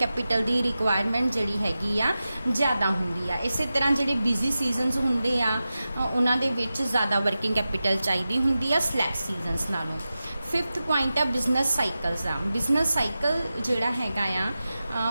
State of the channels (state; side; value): inverted; both; correlation -0.94